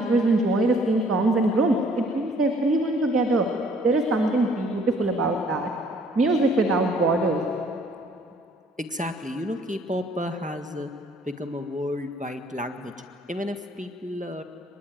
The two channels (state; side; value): normal; both; correlation 0.60